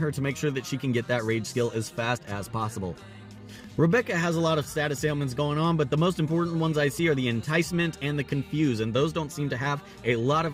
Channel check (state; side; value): identical; both; correlation 1.00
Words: to make sure that she can get that rage skill as fast as possible. Rebecca has a lot of status ailments going on, but the most important ones I see are the Enticement and the Confuse, and those don't seem to have a lot